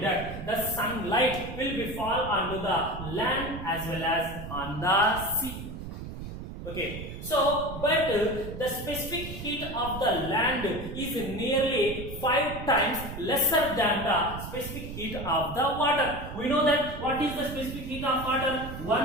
the sunlight will be fall onto the land as well as on the sea. Okay, so but the specific heat of the land is nearly 5 times lesser than the specific heat of the water. We know that what is the specific heat of water?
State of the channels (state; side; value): noise; right; rumble, 9 dB below the sound